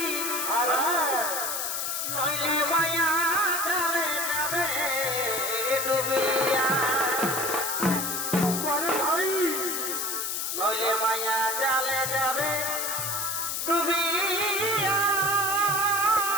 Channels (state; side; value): noise; left; hiss, 1 dB below the sound